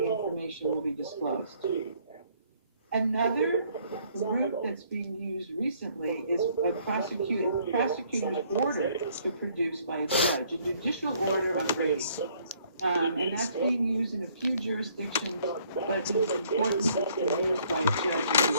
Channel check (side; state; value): both; inverted; correlation -0.63